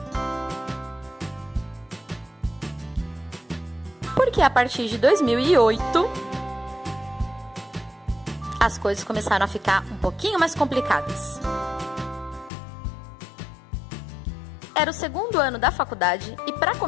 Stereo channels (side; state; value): right; drops out; at 12.5 s